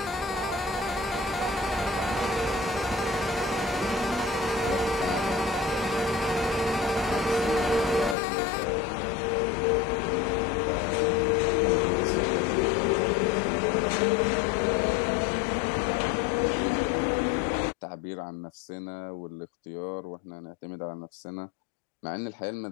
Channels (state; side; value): drops out; right; at 8.2 s